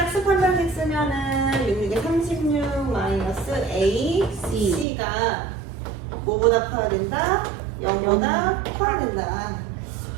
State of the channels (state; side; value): drops out; left; at 4.9 s